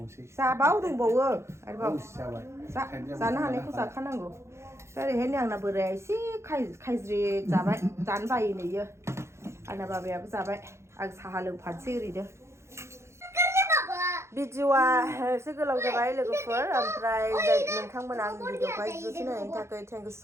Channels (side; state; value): left; late; 0.13 ms